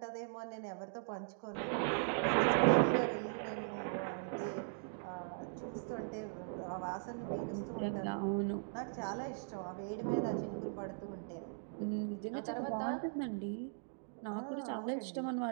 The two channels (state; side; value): silent; left; digital silence